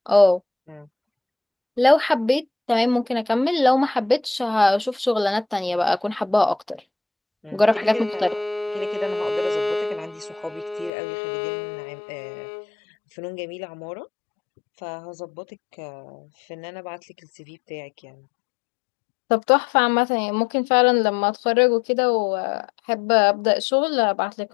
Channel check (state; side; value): drops out; right; at 10.9 s